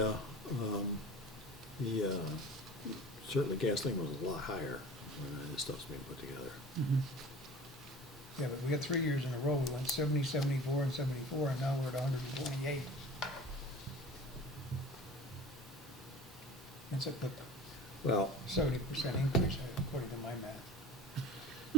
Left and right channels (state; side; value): normal; both; correlation 0.40